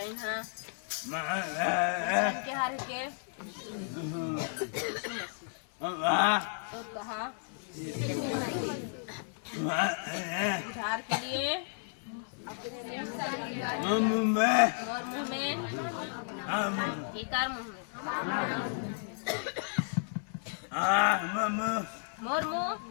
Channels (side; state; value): right; silent; 56 dB below the other